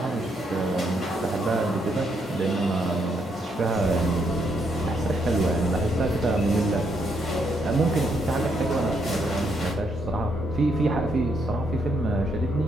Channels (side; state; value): both; normal; correlation 0.75